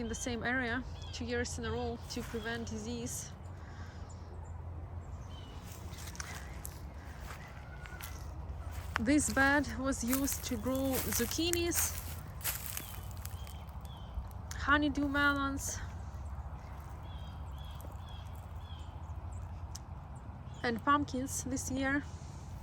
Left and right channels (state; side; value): identical; both; correlation 1.00